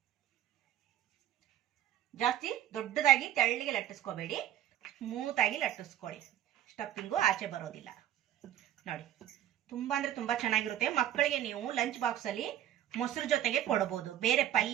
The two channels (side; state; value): left; quieter; 11.7 dB